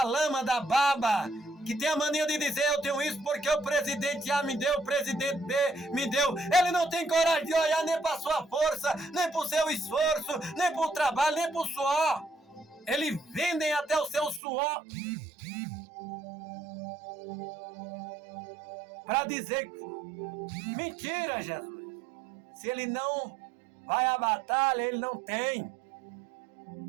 lama, da baba, que tem a mania de dizer: eu tenho isso porque o presidente A me deu, o presidente B me deu. Ele não tem coragem de olhar nem para sua força, nem para o seu esforço, nem para o trabalho, nem para o suor. Eles vendem até o seu suor para dizer: mentira, Jesus. Se ele não vai à batalha, ele não tem.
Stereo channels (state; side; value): drops out; left; at 14.4 s